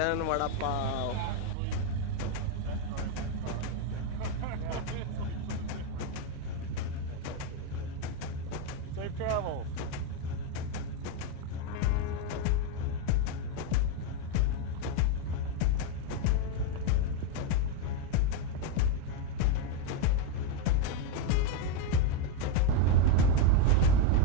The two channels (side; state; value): both; different; correlation 0.02